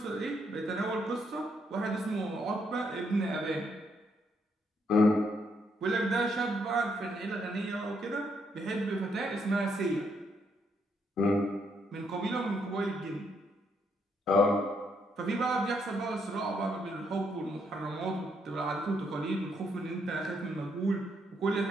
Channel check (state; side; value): normal; both; correlation 0.74